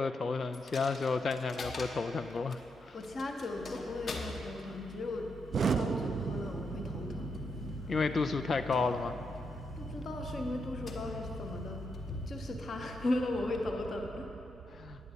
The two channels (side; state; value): both; normal; correlation 0.82